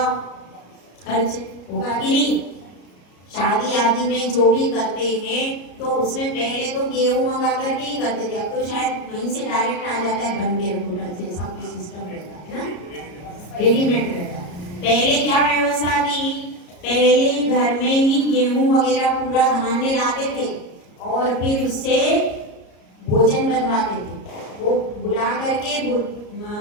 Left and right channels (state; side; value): late; right; 34 ms